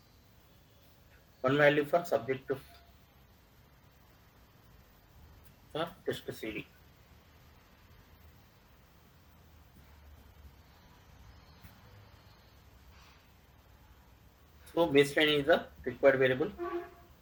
One value for subject for test CD. So baseline is the required variable.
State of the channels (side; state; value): both; identical; correlation 1.00